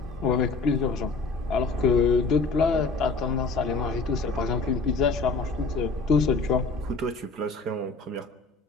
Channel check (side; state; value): right; quieter; 3.9 dB